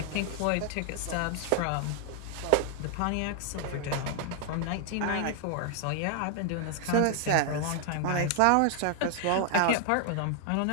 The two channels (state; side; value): different; both; correlation 0.00